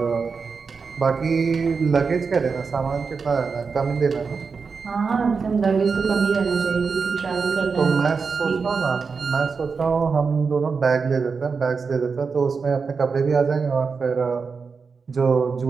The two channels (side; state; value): left; quieter; 5.2 dB